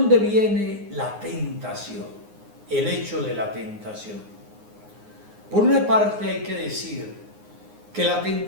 viene la tentación? El hecho de la tentación. Por una parte hay que decir que la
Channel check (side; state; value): left; late; 9.6 ms